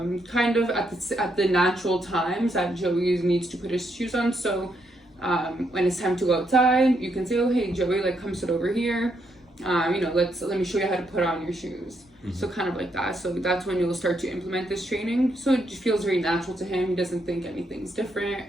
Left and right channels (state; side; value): normal; both; correlation 0.77